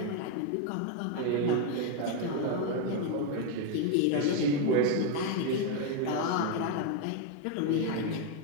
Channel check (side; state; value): both; different; correlation 0.01